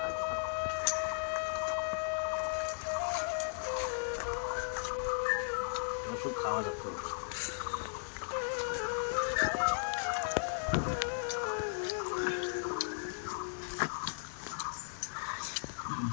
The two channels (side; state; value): right; silent; digital silence